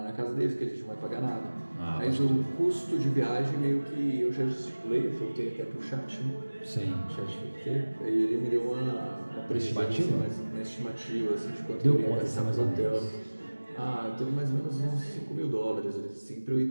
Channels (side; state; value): both; inverted; correlation -1.00